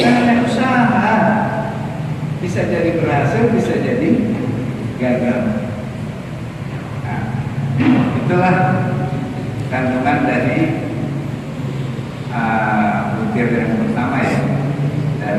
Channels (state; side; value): identical; both; correlation 1.00